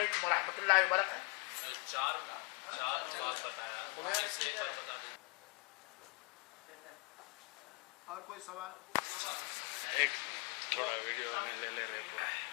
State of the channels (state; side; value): quieter; right; 31.7 dB